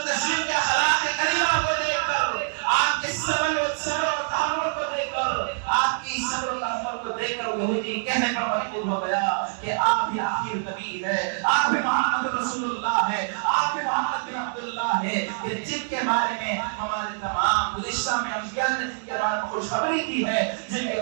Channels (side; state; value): left; silent; digital silence